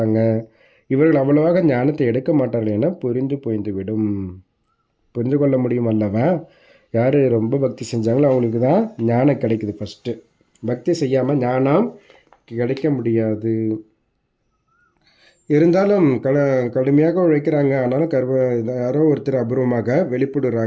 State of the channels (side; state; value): both; identical; correlation 1.00